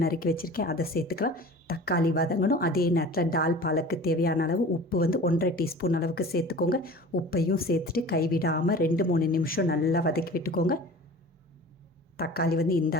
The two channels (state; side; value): normal; both; correlation 0.40